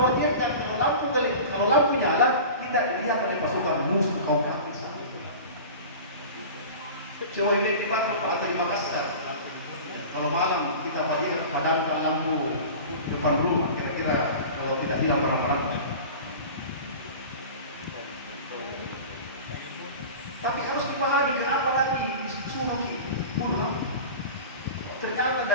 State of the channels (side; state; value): both; inverted; correlation -0.36